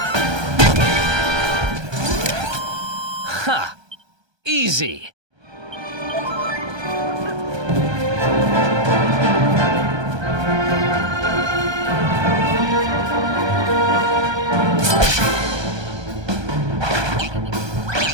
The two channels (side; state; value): left; late; 1.2 ms